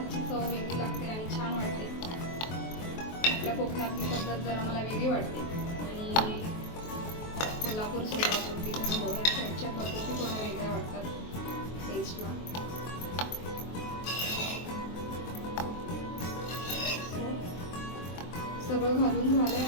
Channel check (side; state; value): right; late; 23 ms